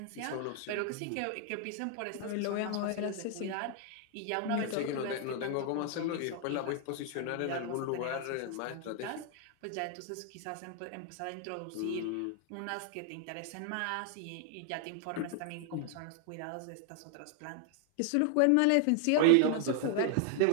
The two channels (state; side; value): different; both; correlation 0.00